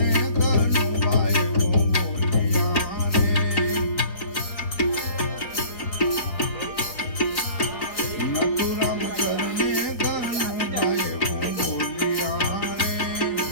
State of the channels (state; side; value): late; right; 4.4 ms